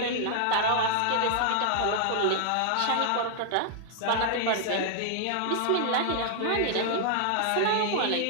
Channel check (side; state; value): both; different; correlation -0.01